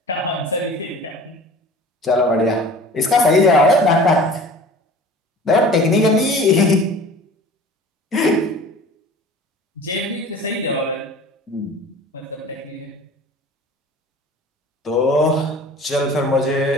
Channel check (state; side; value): normal; both; correlation 0.43